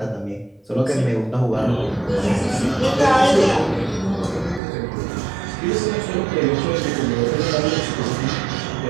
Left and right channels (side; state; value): left; drops out; at 4.6 s